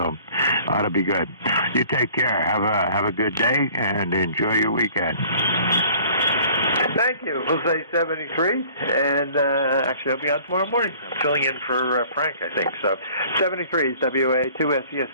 ought to be good. You take care. Have a good day, and enjoy your weekend. Thank you. Jose 73, and actually I'll be on tomorrow morning. I'm filling in for Frank, I think. So 73 is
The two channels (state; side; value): inverted; both; correlation -0.52